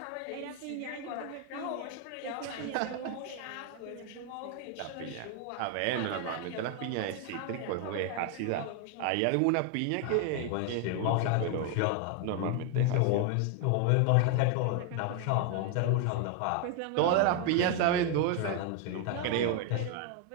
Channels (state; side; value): different; both; correlation 0.01